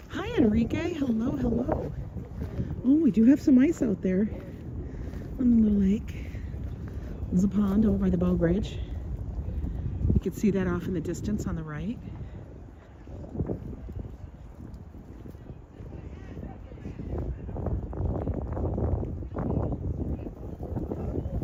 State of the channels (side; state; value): both; identical; correlation 1.00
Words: Hi, Enrique. Hello, hello. Oh, we do have some ice out there on the little lake. There's a pond over by the bow bridge. You can see that off in the distance on the right.